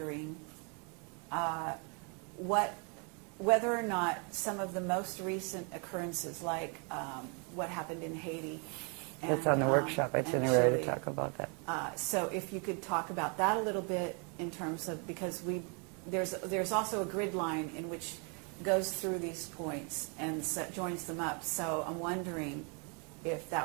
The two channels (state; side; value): quieter; left; 36.0 dB